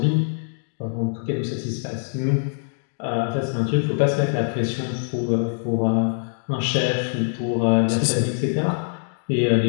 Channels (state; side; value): silent; right; digital silence